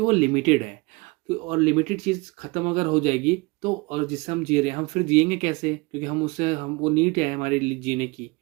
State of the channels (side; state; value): left; quieter; 25.6 dB